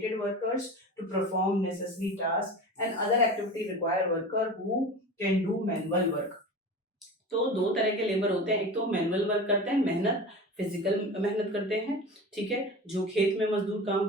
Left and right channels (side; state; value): both; normal; correlation 0.32